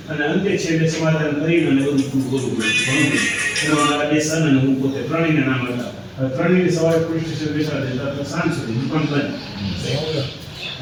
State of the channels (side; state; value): both; identical; correlation 1.00